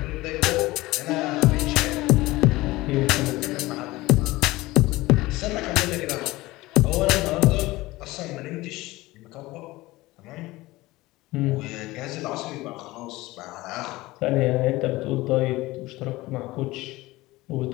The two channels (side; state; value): right; quieter; 19.4 dB